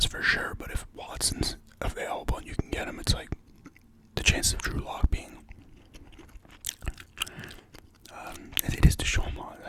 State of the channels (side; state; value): both; identical; correlation 1.00